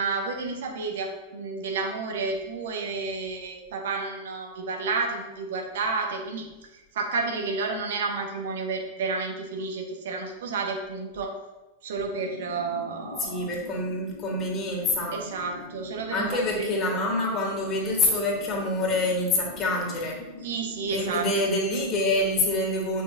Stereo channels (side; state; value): both; normal; correlation -0.05